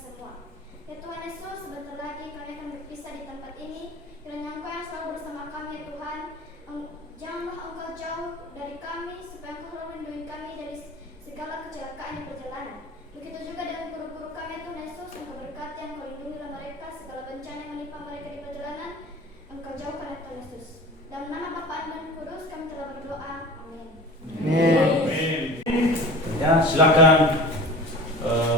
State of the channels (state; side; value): normal; both; correlation 0.38